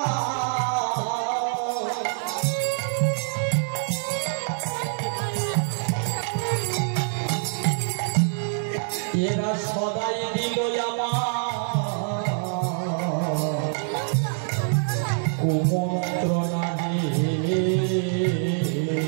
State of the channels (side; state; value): left; silent; 62 dB below the other